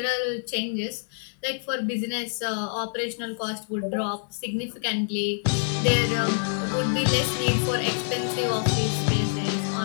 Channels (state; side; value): silent; right; 61 dB below the other